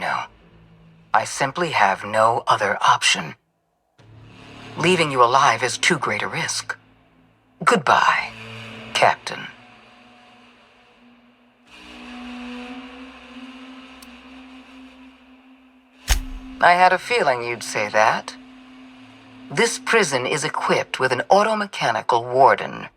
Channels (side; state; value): both; identical; correlation 1.00